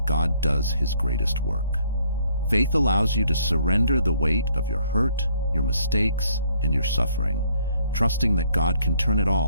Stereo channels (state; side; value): inverted; both; correlation -0.65